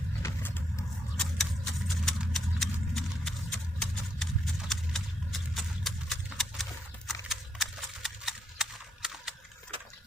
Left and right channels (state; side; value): normal; both; correlation 0.77